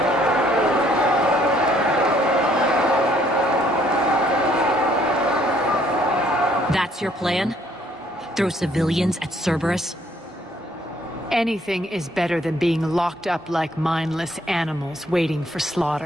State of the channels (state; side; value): normal; both; correlation 0.64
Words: That's your plan? Throw civilians at Cerberus? Anything is better than being locked up like mindless animals waiting for